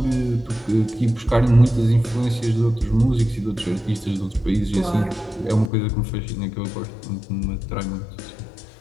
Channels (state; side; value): drops out; right; at 5.7 s